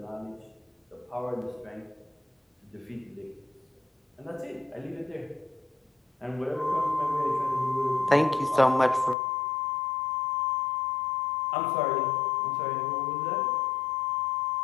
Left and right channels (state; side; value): drops out; right; at 9.2 s